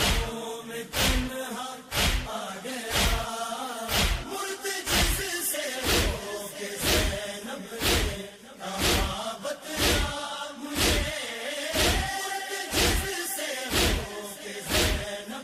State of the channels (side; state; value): both; identical; correlation 1.00